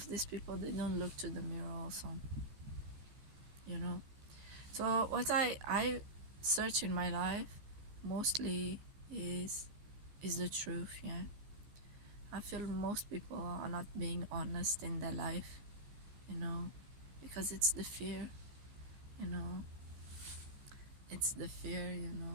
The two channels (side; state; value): left; late; 15 ms